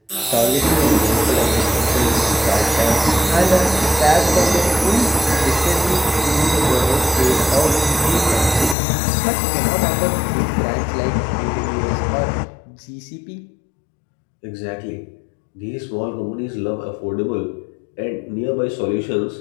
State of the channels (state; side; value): drops out; right; at 8.8 s